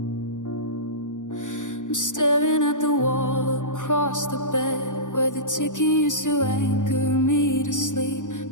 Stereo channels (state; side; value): late; right; 0.86 ms